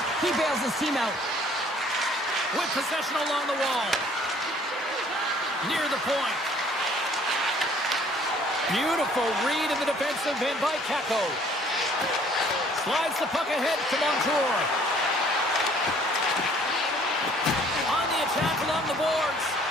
he bails his team out. With possession along the wall. Near the point. Beautiful read in the defensive end by Kako. Slides the puck ahead to Montour. On the attack along the boards.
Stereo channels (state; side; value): normal; both; correlation 0.58